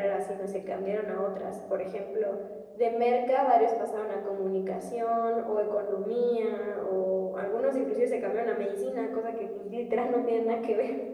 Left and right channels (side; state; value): both; identical; correlation 1.00